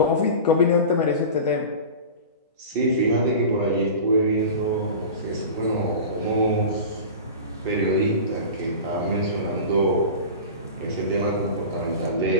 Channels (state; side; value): inverted; both; correlation -0.32